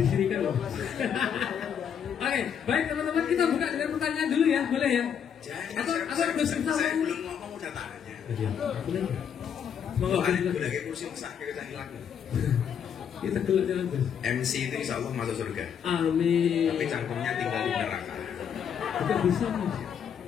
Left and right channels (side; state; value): right; quieter; 8.0 dB